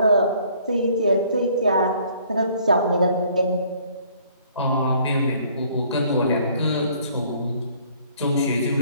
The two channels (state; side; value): inverted; both; correlation -0.59